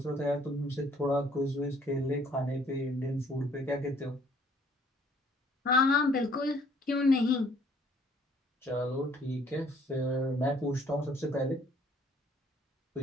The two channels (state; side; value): normal; both; correlation 0.61